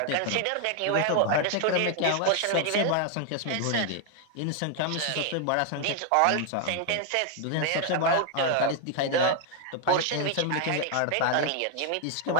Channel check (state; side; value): different; both; correlation 0.00